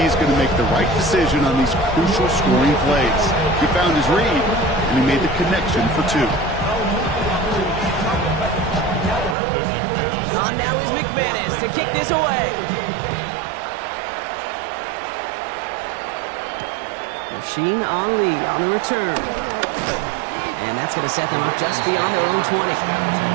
is going to make the right decision on these crucial scoring plays. He found his read, and he made the connection for 2. On now is McManus to kick this away. Rasheen Ali on the return. And that's going to set them up just beyond their own 20.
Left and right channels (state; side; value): drops out; left; at 9.3 s